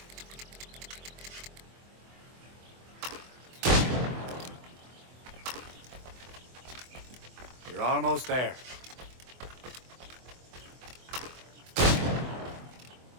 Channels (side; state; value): left; late; 24 ms